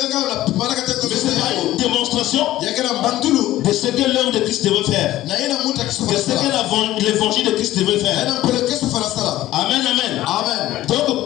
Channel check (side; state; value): right; quieter; 15.0 dB